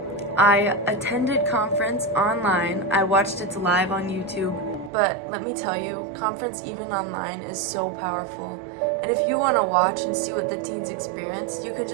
I attended conference online. I watched it live on YouTube. But let me tell you, conference even online is so powerful. And if you want to watch and see what the teens experienced, you could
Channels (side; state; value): left; drops out; at 4.9 s